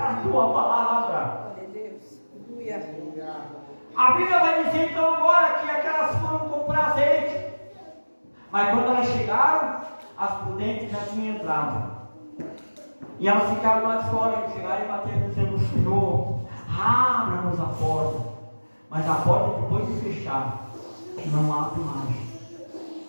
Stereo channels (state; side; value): inverted; both; correlation -1.00